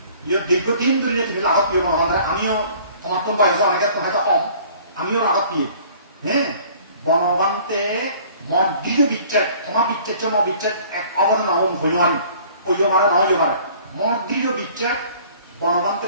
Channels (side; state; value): both; inverted; correlation -0.52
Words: দীর্ঘদিন ধরে তুমি লাভত প্রিয় বনবন্ধের আমিও তোমার তো বয়স অনেকে হয়তো কম আমিও লাভত প্রিয় হ্যাঁ বনবান্তে মঠ দিও বিচ্ছেদ তোমার বিচ্ছেদ বিচ্ছেদ এক অবদান হইল আমি ওই মানে না হইতে পারে মঠ দিও বিচ্ছেদ